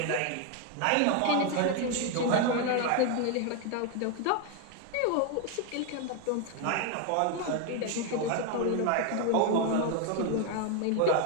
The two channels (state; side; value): different; both; correlation 0.01